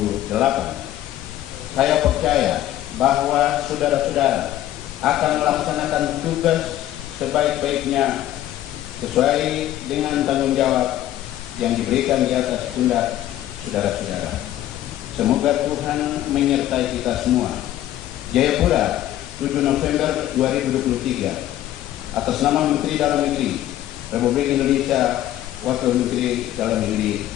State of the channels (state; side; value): quieter; right; 13.2 dB